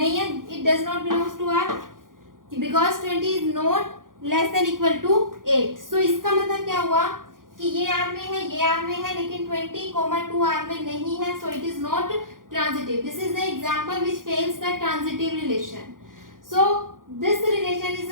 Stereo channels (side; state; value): left; late; 0.90 ms